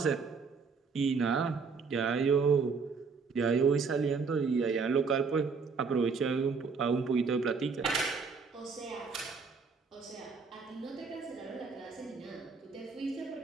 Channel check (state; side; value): quieter; left; 5.1 dB